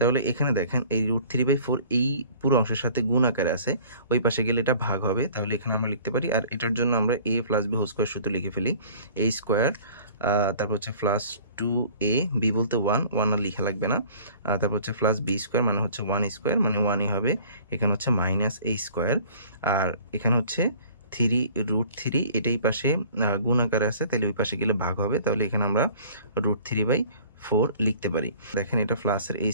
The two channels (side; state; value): both; inverted; correlation -0.49